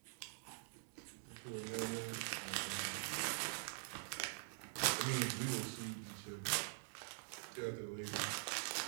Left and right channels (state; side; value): silent; left; digital silence